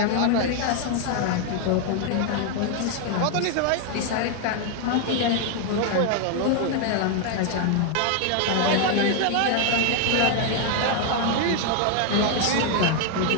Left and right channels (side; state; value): both; different; correlation 0.01